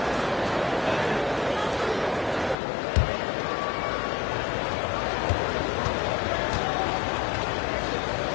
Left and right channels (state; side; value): drops out; right; at 2.6 s